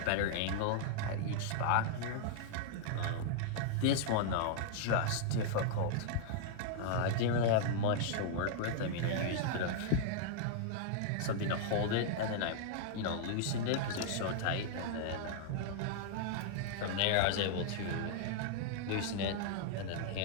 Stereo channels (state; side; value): different; both; correlation -0.01